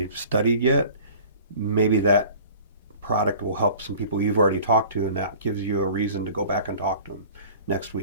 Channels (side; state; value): both; inverted; correlation -0.45